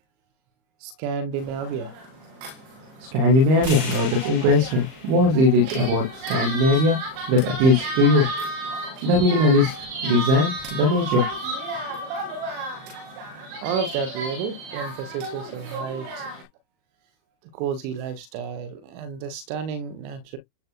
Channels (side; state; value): left; late; 38 ms